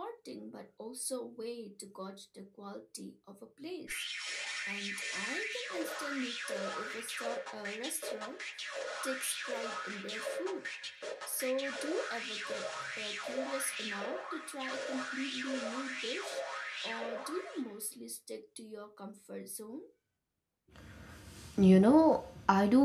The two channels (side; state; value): both; identical; correlation 1.00